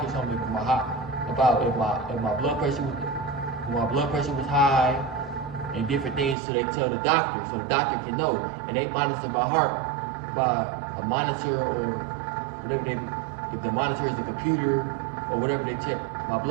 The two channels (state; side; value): drops out; left; at 6.4 s